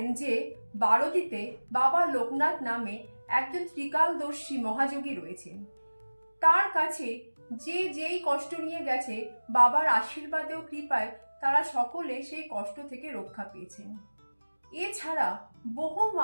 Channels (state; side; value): inverted; both; correlation -1.00